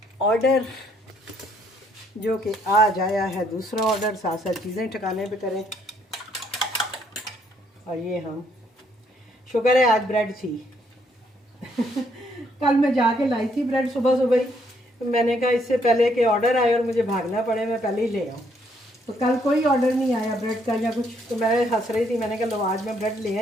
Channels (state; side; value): normal; both; correlation 0.70